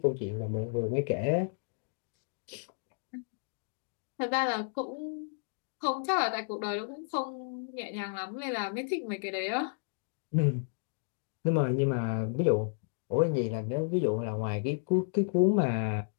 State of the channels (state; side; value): silent; right; digital silence